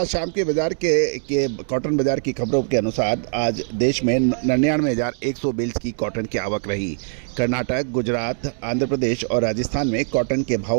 शाम के बाजार के कॉटन बाजार की खबरों के अनुसार आज देश में 99,100 बेल्स की कॉटन की आवक रही। कर्नाटक, गुजरात, आंध्र प्रदेश और राजस्थान में कॉटन के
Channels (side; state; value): left; silent; digital silence